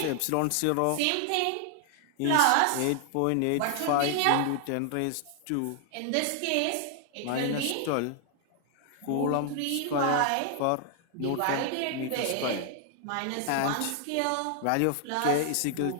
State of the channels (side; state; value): both; different; correlation 0.00